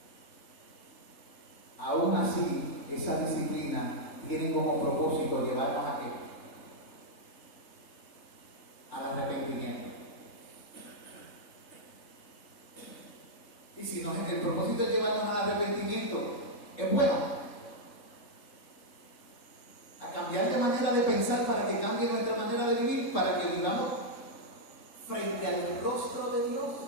aún así, esa disciplina tiene como propósito llevarnos a qué? Al arrepentimiento. Y si el propósito es llevarnos al arrepentimiento, es bueno. A cambiar de manera de pensar para que cambie nuestra manera de vivir, para que vivamos frente al rostro de Dios.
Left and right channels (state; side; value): late; right; 3.7 ms